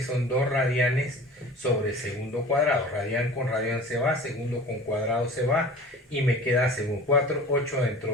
son 2 radianes sobre segundo cuadrado. Radian con radian se va, segundo con cuadrado se va, y me queda segundo. 4, 8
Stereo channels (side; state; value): both; normal; correlation 0.40